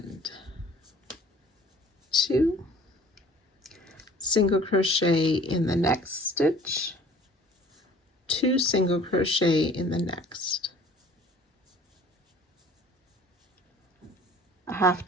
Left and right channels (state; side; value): normal; both; correlation 0.51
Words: 2. Single crochet in the next stitch. 2 single crochet in the next. A half